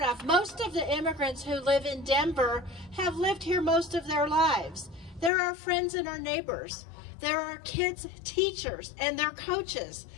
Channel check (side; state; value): right; drops out; at 5.3 s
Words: of. Most of the immigrants who live in Denver have lived here most of their lives. They're our friends and our neighbors. They're our kids' teachers and their coaches.